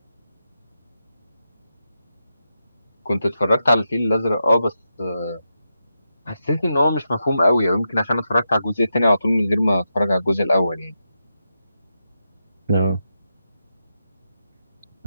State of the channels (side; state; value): both; inverted; correlation -0.87